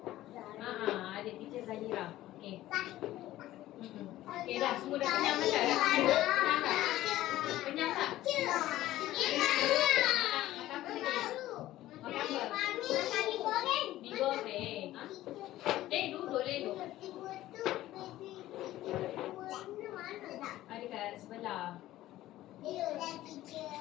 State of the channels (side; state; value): right; quieter; 15.0 dB